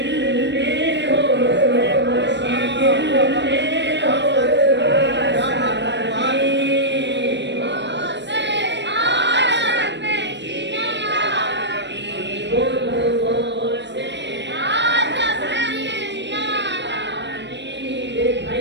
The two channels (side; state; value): left; late; 0.52 ms